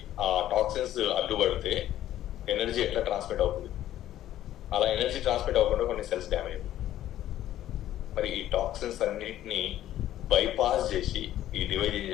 ఆ టాక్సిన్స్ అడ్డుపడితే ఎనర్జీ ఎట్లా ట్రాన్స్మిట్ అవుతుంది? అలా ఎనర్జీ ట్రాన్స్మిట్ అవ్వకుండా కొన్ని సెల్స్ డ్యామేజ్ అవుతుంది. మరి ఈ టాక్సిన్స్ అన్నింటినీ బైపాస్ చేసి ఈ డివైజ్ ఏం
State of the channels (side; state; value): right; quieter; 12.8 dB